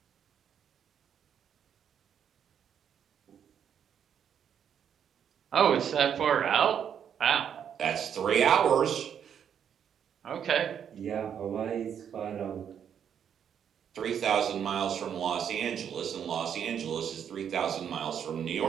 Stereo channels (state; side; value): quieter; left; 8.4 dB